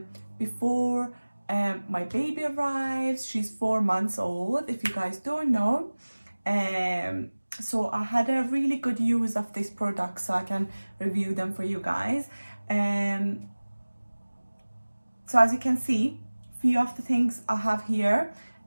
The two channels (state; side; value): inverted; both; correlation -1.00